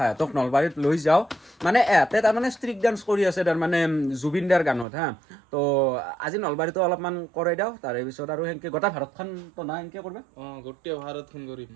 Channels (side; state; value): left; drops out; at 4.9 s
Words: নলবাৰীত লৈ যাওঁ মানে এহঁতে তাৰমানে ষ্ট্ৰিক ডান্স কৰি আছে তাৰমানে জুবিন দাৰ গানত হা তো আজি নলবাৰীতো অলপমান কৰাই দিওঁ তাৰে পিছত আৰু সেনেকৈ গোটেই ভাৰতখন তো না সেনেকৈ কৰিবা গোটেই ভাৰতখন কৰিম